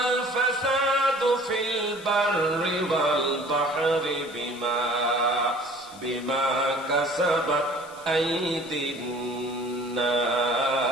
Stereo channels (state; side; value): noise; left; hiss, 21 dB below the sound